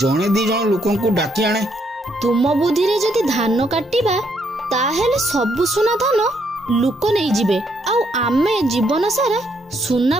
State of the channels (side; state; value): both; normal; correlation 0.73